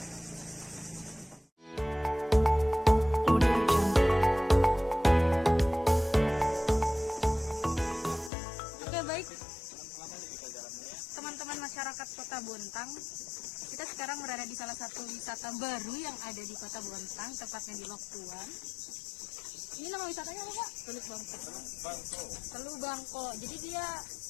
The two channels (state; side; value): drops out; right; at 8.3 s